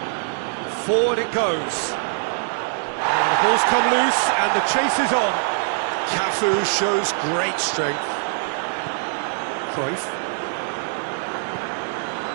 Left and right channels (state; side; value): silent; left; digital silence